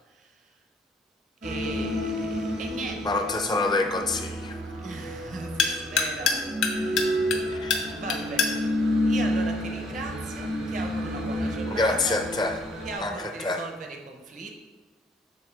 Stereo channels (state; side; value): normal; both; correlation 0.63